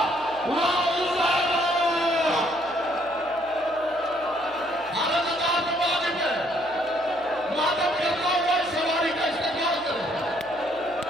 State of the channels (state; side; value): noise; right; hum, 25 dB below the sound